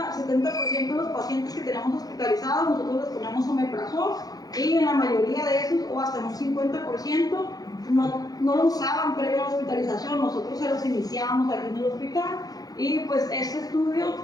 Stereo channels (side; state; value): right; late; 0.18 ms